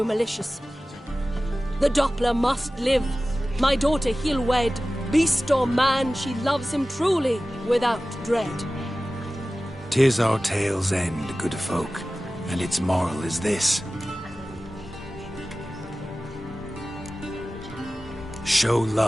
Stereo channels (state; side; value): normal; both; correlation 0.96